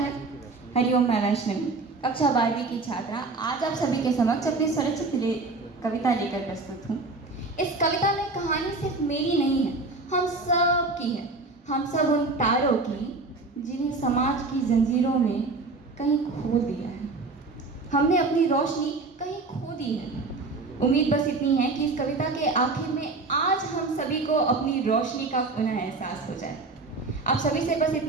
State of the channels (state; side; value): quieter; left; 3.6 dB